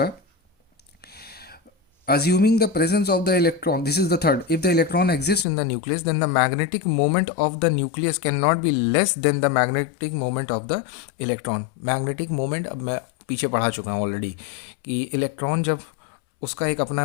assuming the presence of the electron, this is the third, if the electron exists in the nucleus then the magnetic moment of the nucleus cannot be less than the magnetic moment of the electron. magnetic moment, अब मैं पीछे पढ़ा चुका हूँ already कि electron जब उसका एक अपना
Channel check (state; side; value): drops out; right; at 5.5 s